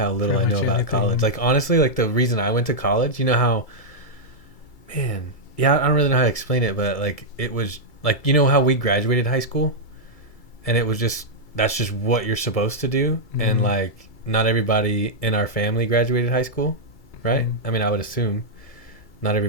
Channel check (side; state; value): right; late; 2.3 ms